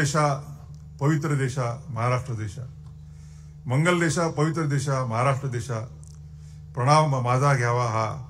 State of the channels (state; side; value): identical; both; correlation 1.00